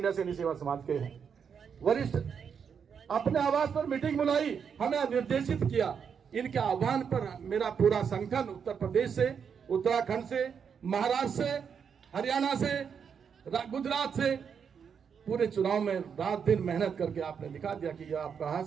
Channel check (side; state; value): left; quieter; 6.9 dB